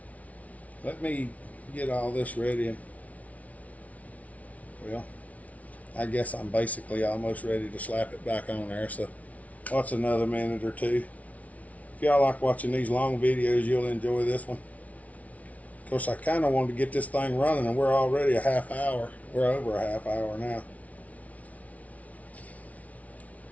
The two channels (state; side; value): late; right; 0.069 ms